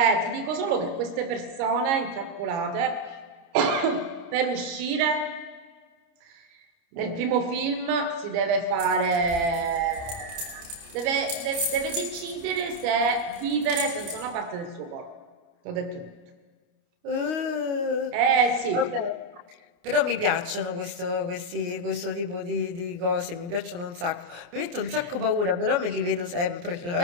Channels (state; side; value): late; left; 29 ms